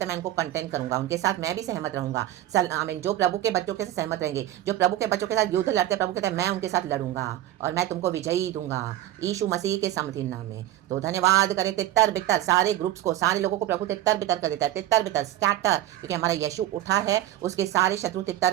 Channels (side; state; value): left; quieter; 13.7 dB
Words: है मैं उनको कंटेंट करूंगा, उनके साथ मैं भी सहमत रहूंगा। आमीन। जो प्रभु के बच्चों के साथ सहमत रहेंगे, जो प्रभु के बच्चों के साथ युद्ध लड़ते हैं, प्रभु कहता है मैं उनके साथ लड़ूंगा और मैं तुमको विजयी दूंगा यीशु मसीह के सामर्थ्य नाम में। तो धन्यवाद करें तितर बितर सारे ग्रुप्स को, सारे लोगों को प्रभु तितर बितर कर देता है। तितर बितर स्कैटर, क्योंकि हमारा यीशु उठा है, उसके सारे शत्रु